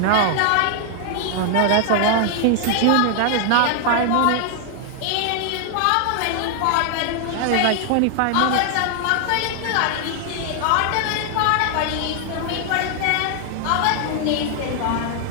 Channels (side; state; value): both; different; correlation 0.00